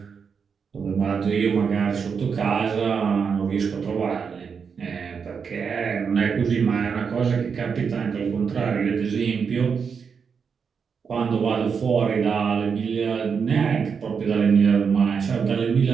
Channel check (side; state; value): left; quieter; 6.2 dB